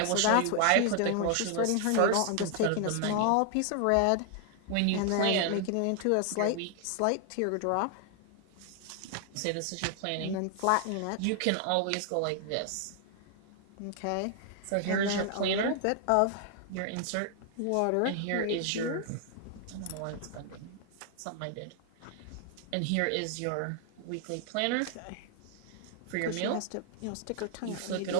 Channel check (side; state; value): both; different; correlation 0.00